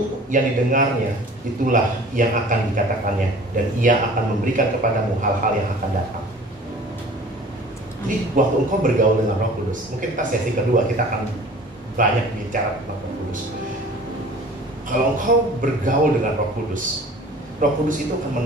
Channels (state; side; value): normal; both; correlation 0.46